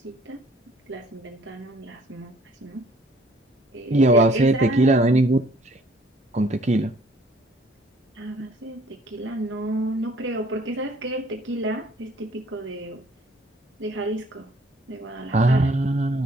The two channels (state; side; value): normal; both; correlation 0.59